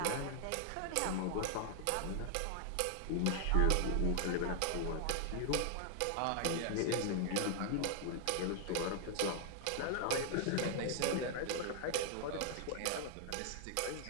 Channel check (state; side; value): different; both; correlation 0.00